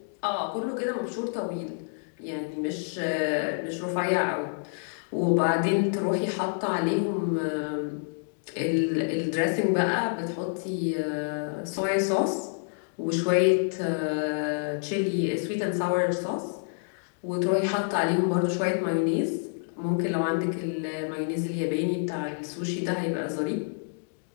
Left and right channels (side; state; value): right; silent; digital silence